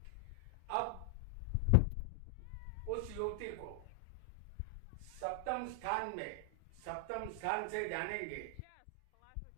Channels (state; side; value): different; both; correlation 0.00